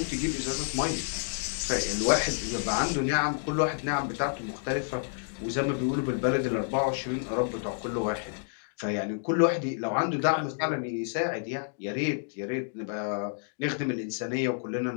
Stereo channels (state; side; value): silent; right; digital silence